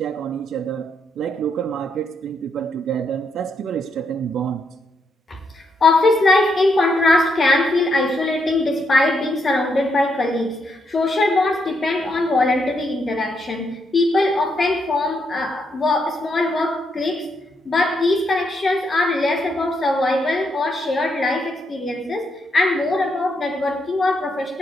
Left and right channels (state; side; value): normal; both; correlation 0.78